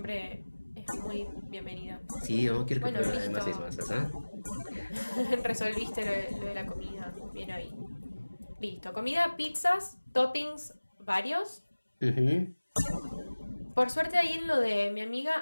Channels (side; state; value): both; inverted; correlation -1.00